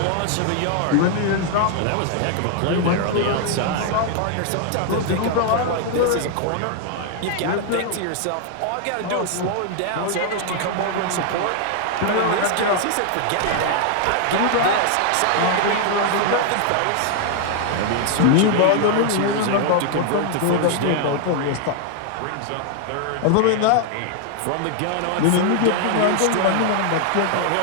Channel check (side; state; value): both; different; correlation 0.00